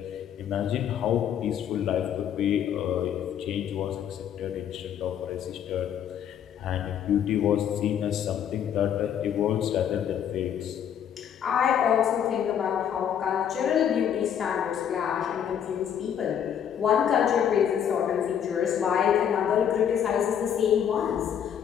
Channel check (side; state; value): right; quieter; 9.0 dB